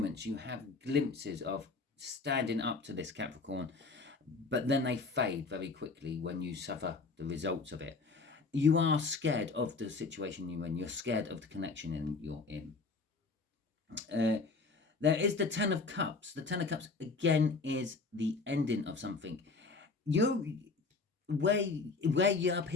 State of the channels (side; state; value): right; quieter; 4.1 dB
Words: you have glimpses of standing up to this Capricorn, but then they fade very quickly when you suffer the results of it. You are scared of the situation you're in. You're scared of the connection you're in. There is the Ten of Cups. The Ten of Cups, again, is the ending of something. Where you're up